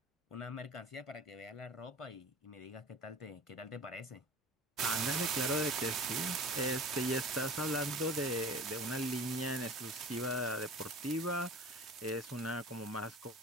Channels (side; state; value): both; normal; correlation 0.39